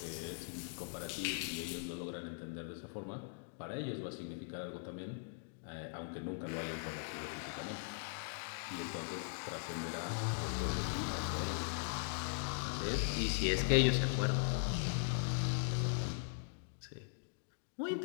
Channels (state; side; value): silent; right; digital silence